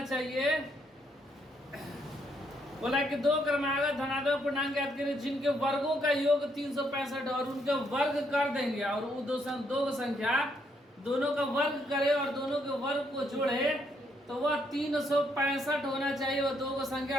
चाहिए। बोला कि दो क्रमागत धनात्मक पूर्णांक ज्ञात करें जिनके वर्गों का योग 365 और उनके वर्ग कर देंगे और वो दो संख्या दोनों का वर्ग करे और दोनों के वर्ग को जोड़े तो वह 365 होना चाहिए। वो दो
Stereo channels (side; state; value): both; normal; correlation 0.73